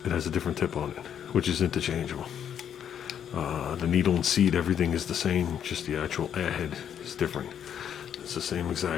it has a different tip on it, which is interchangeable. The needle and seat, everything is the same, just the actual airhead is different. It's the same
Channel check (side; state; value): right; quieter; 9.0 dB